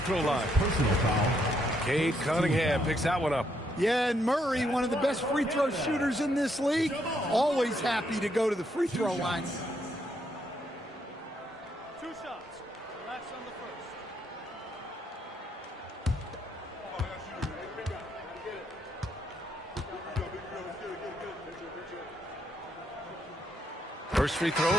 line. Personal foul. Cade Cunningham picks that one up. Yeah, and Murray, one of the best free throw shooters in this league, always happy to go to the free throw line. 2 shots. Relax on the first. First free throw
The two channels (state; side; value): normal; both; correlation 0.75